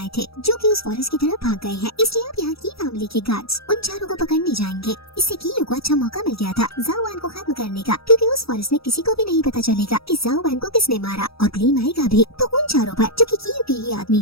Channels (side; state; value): right; late; 0.77 ms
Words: थे, जो कि उस फॉरेस्ट की तरफ भाग गए हैं। इसलिए अब यहाँ की फैमिली के गार्ड्स उन चारों को पकड़ने जाएंगे। इससे कीयू को अच्छा मौका मिल गया था जाओ वन को खत्म करने का, क्योंकि उस फॉरेस्ट में किसी को भी नहीं पता चलेगा कि जाओ वन को किसने मारा, और ब्लेम आएगा भी तो उन चारों पर जो कि कीयू के ही आदमी